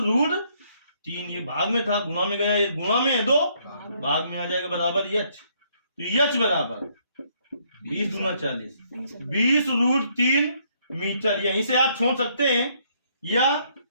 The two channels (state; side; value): inverted; both; correlation -0.69